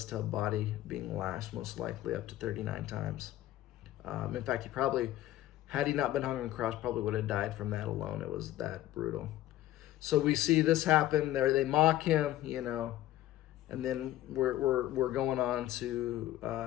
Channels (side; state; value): right; quieter; 14.4 dB